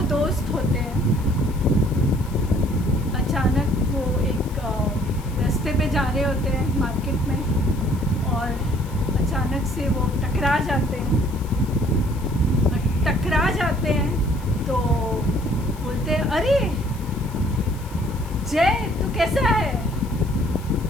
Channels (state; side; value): noise; left; hiss, 21 dB below the sound